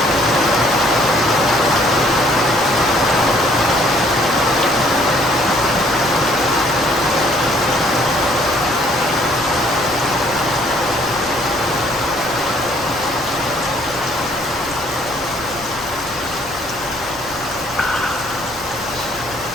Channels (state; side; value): noise; left; rumble, 21 dB below the sound